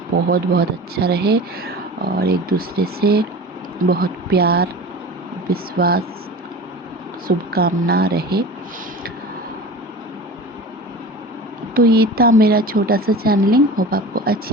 बहुत बहुत अच्छा रहे और एक दूसरे से बहुत प्यार, विश्वास, शुभकामना रहे। तो ये था मेरा छोटा सा चैनलिंग। होप आपको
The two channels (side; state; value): both; normal; correlation 0.34